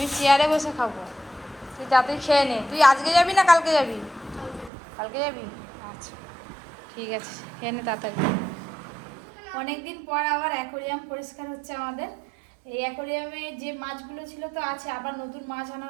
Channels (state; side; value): drops out; left; at 4.7 s